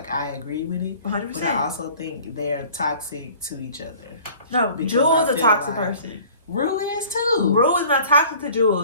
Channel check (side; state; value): both; inverted; correlation -0.49